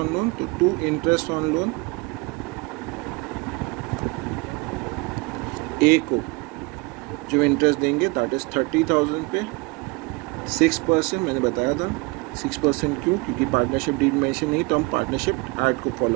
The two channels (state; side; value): quieter; left; 26.5 dB